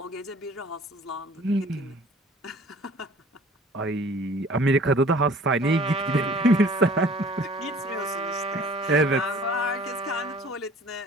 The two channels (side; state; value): both; normal; correlation 0.50